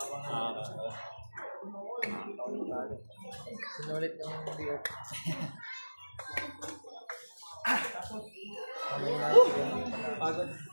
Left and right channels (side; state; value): both; inverted; correlation -1.00